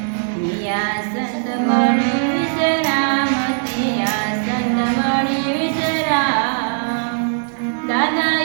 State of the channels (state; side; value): silent; left; digital silence